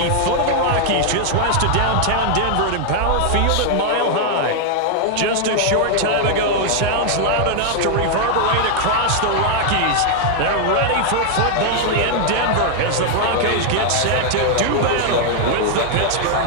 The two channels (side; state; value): both; different; correlation 0.00